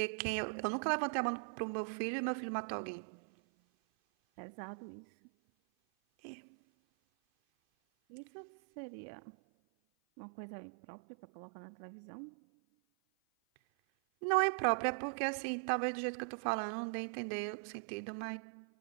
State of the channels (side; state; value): left; silent; 51 dB below the other